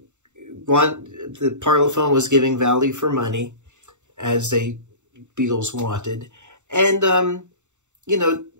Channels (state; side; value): late; left; 0.84 ms